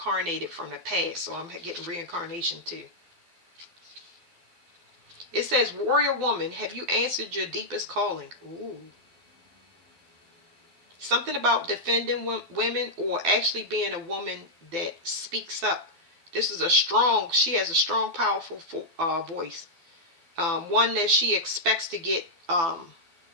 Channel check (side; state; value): left; late; 12 ms